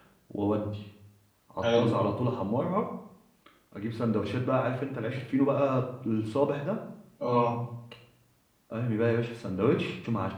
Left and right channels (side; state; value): both; identical; correlation 1.00